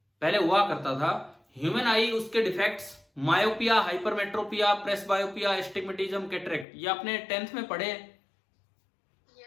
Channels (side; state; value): right; drops out; at 6.7 s